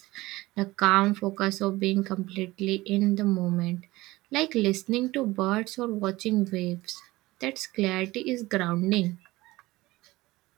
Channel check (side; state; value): left; quieter; 19.3 dB